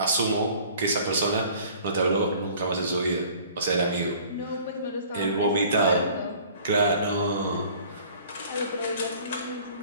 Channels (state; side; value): inverted; both; correlation -0.51